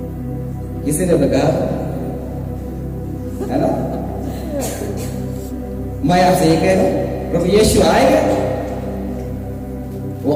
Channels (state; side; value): identical; both; correlation 1.00